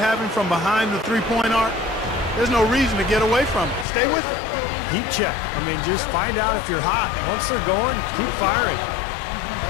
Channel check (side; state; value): right; drops out; at 3.9 s